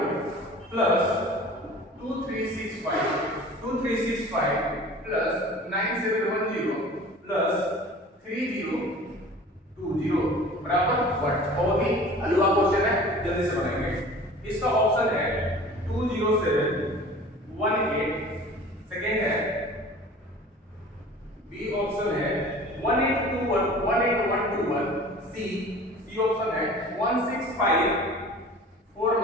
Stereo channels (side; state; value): both; normal; correlation 0.43